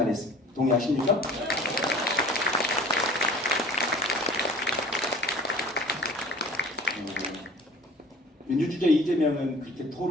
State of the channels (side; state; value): both; normal; correlation 0.46